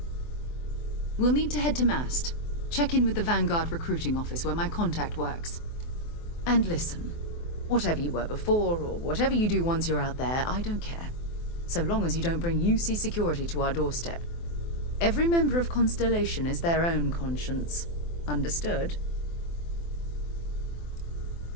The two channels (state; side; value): late; right; 24 ms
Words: We'll need to head to Mast. Check in with the Vanguard recruiting office where my contact works. And listen. Whatever you were before, or whatever you do once you're out there, I don't care. So long as you don't bring UC security to our doorstep. Every member of Constellation is their own conscience. Understood?